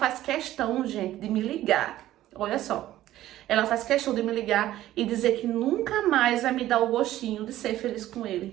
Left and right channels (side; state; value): left; quieter; 14.1 dB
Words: questão, gente, de me ligar. Olha só. Ela faz questão de me ligar e dizer que nunca mais vai me dar o gostinho de ser feliz com